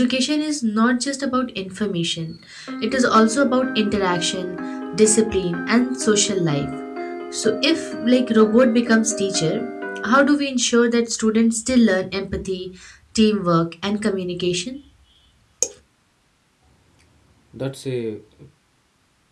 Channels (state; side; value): identical; both; correlation 1.00